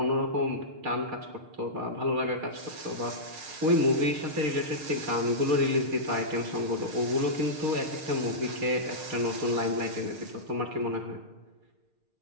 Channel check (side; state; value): left; late; 6.5 ms